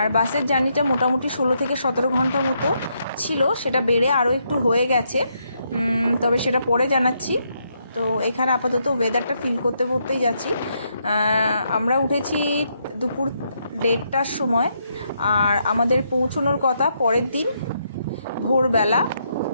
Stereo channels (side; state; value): both; inverted; correlation -0.77